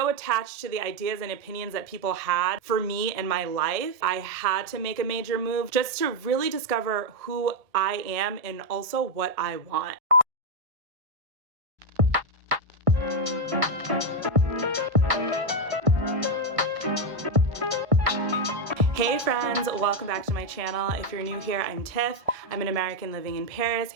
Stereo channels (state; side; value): late; left; 1.6 ms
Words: attached to the ideas and opinions that people had for me in my life, I had to make a major move just to really discover who I am and also what I want. Hey friends, welcome back to my channel. If you're new here, I'm Tiff. I'm an American living in Paris,